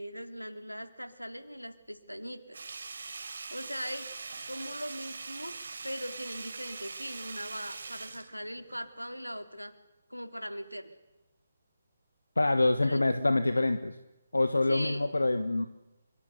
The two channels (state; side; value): inverted; both; correlation -0.98